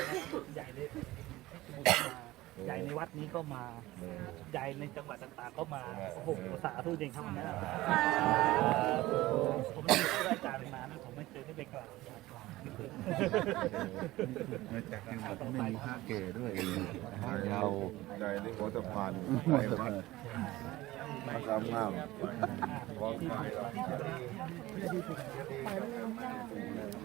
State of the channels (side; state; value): left; quieter; 17.8 dB